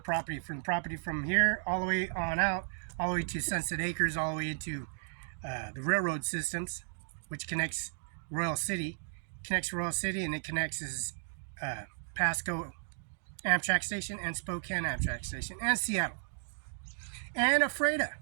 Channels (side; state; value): left; silent; digital silence